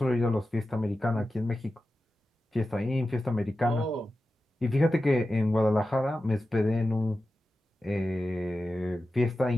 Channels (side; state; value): both; normal; correlation 0.93